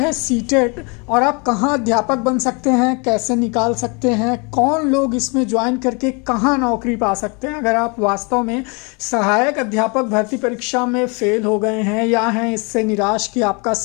सीटेट और आप कहां अध्यापक बन सकते हैं, कैसे निकाल सकते हैं, कौन लोग इसमें ज्वाइन करके कहां नौकरी पा सकते हैं। अगर आप वास्तव में सहायक अध्यापक भर्ती परीक्षा में फेल हो गए हैं या हैं इससे निराश कि आपका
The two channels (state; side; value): quieter; right; 31.7 dB